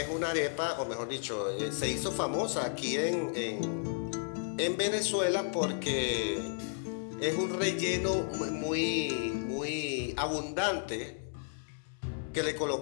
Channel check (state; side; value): silent; right; 56 dB below the other